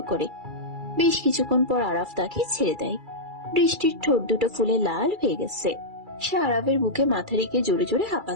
করে। বেশ কিছুক্ষণ পর আরাফ তাকে ছেড়ে দেয়। বৃষ্টির ঠোঁট দুটো ফুলে লাল হয়ে গেছে। সে আরাফের বুকে মাথা রেখে জোরে জোরে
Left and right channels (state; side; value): late; left; 2.3 ms